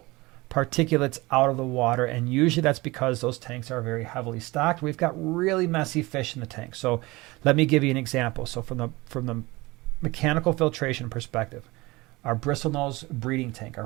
particulates out of the water, and usually that's because those tanks are very heavily stocked. We've got really messy fish in the tank. So let me give you an example. So from the mechanical filtration perspective, our bristlenose breeding tank, our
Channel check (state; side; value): quieter; left; 22.0 dB